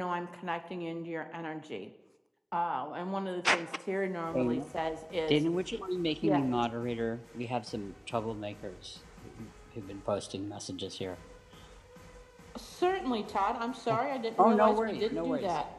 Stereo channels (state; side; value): identical; both; correlation 1.00